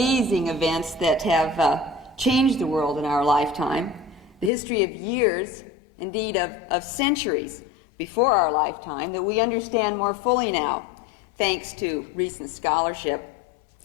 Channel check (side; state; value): right; drops out; at 4.5 s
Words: events that have changed the world in our lifetime, the history of years, indeed of centuries before our lifetime that we understand more fully now, thanks to recent scholarship.